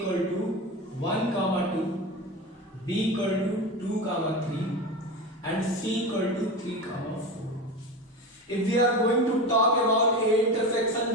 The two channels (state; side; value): normal; both; correlation 0.25